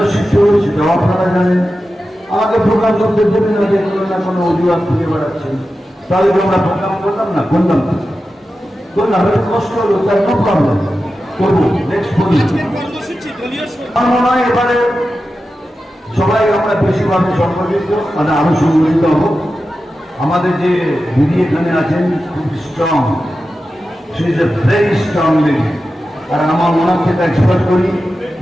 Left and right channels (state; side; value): normal; both; correlation 0.92